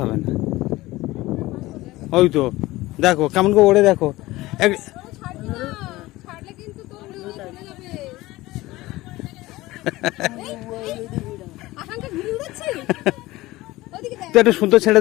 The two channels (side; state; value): right; quieter; 18.6 dB